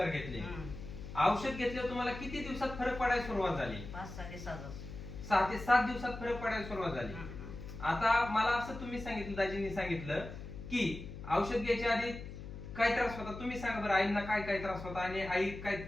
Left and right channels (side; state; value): left; noise; hum, 11 dB below the sound